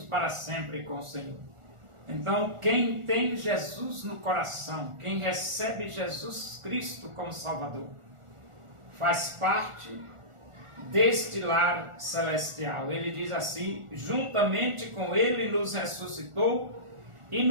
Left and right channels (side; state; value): left; late; 1.4 ms